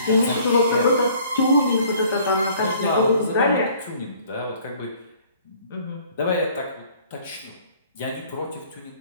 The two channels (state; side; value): inverted; both; correlation -0.56